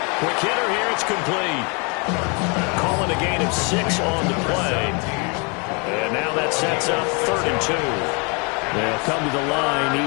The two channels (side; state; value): right; quieter; 32.9 dB